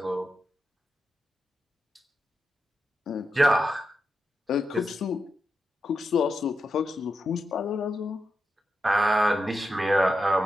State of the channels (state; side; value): normal; both; correlation 0.87